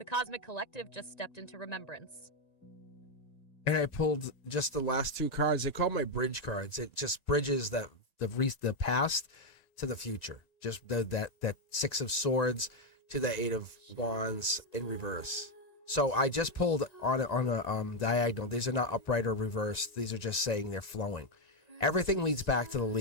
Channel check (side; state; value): right; late; 1.9 ms